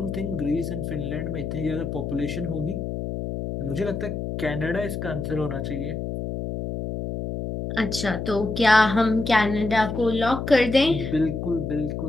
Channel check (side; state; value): left; noise; hum, 4 dB below the sound